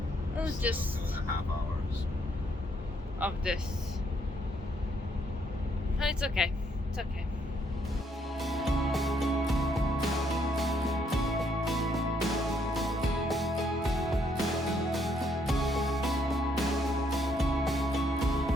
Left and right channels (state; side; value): normal; both; correlation 0.71